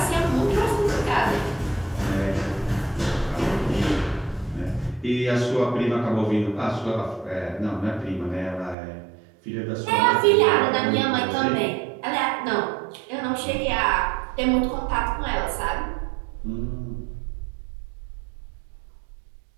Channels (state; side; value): drops out; left; at 8.8 s